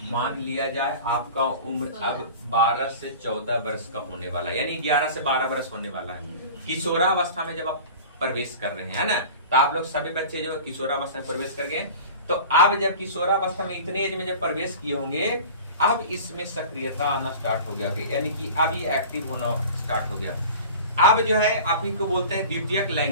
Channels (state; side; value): inverted; both; correlation -0.39